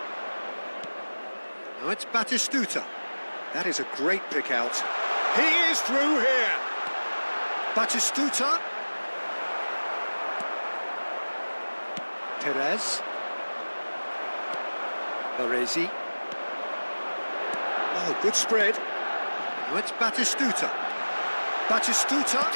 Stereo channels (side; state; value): both; inverted; correlation -1.00